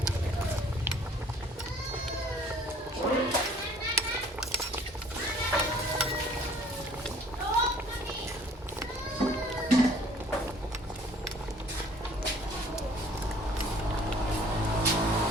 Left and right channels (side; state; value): both; normal; correlation 0.55